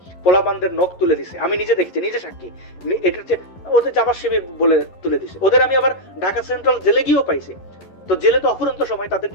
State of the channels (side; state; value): right; late; 11 ms